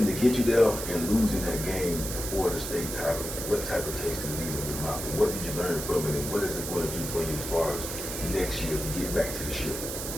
get you there and losing that game before the state title? What type of taste did it leave in your mouth? And what did you learn from it? And what is it going to do for you as far as next year to get back to the ship?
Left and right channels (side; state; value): right; noise; hiss, 6 dB below the sound